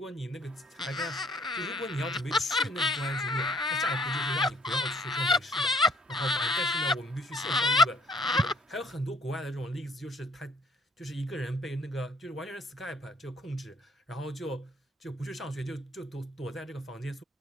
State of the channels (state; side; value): normal; both; correlation 0.60